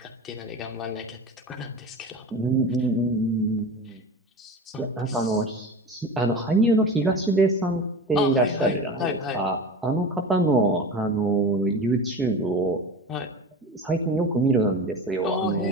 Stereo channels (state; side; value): normal; both; correlation 0.30